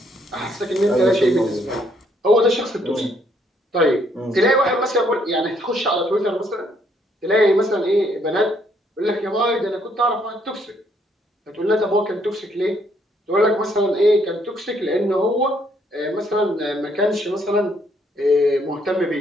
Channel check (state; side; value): normal; both; correlation 0.69